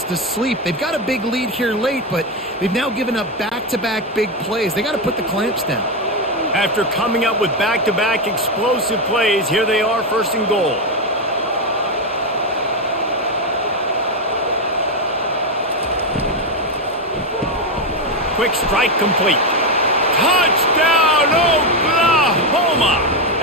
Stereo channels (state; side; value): normal; both; correlation 0.09